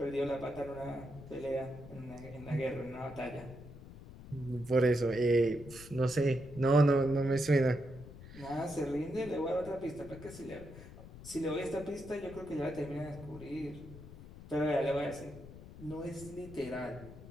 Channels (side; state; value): left; noise; rumble, 15 dB below the sound